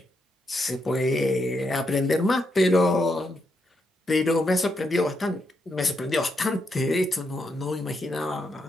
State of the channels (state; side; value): normal; both; correlation 0.81